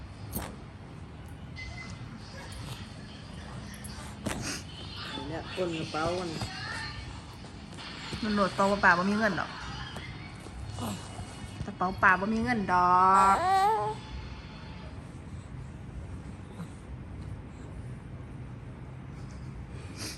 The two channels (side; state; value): both; identical; correlation 1.00